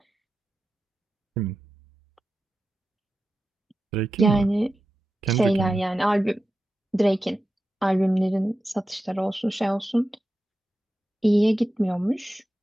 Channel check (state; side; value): normal; both; correlation 0.92